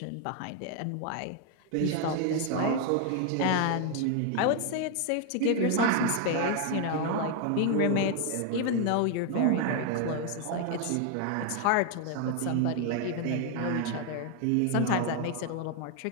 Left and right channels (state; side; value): different; both; correlation 0.00